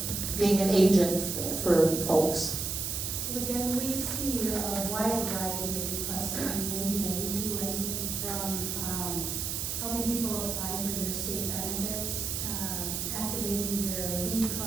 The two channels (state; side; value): noise; right; hiss, 2 dB below the sound